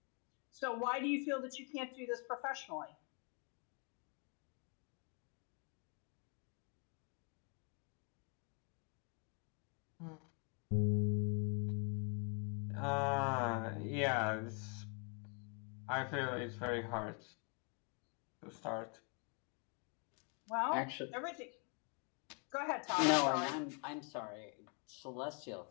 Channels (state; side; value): quieter; right; 37.7 dB